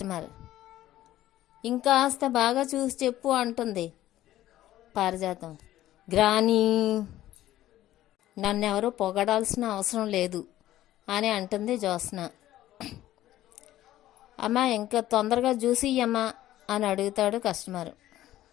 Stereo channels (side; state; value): right; quieter; 14.1 dB